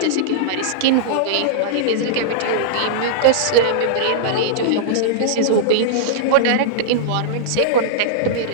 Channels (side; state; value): both; different; correlation -0.02